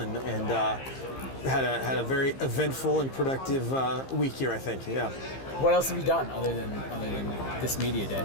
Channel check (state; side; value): late; right; 15 ms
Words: had a very eventful and productive week here, I think. Yeah. What else have you done other than this media day?